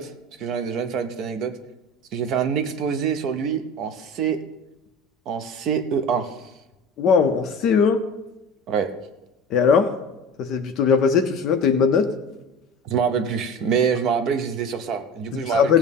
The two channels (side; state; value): both; normal; correlation 0.34